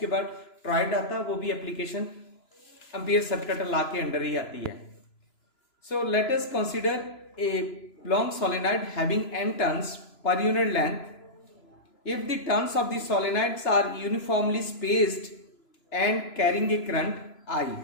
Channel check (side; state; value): right; late; 3.0 ms